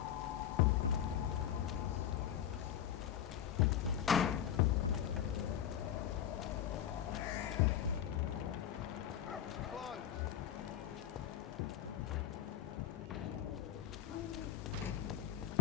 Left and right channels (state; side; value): quieter; right; 10.2 dB